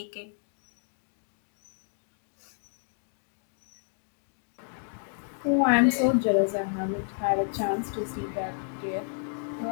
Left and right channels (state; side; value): silent; right; digital silence